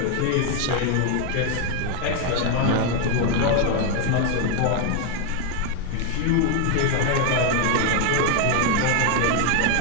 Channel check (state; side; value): different; both; correlation 0.01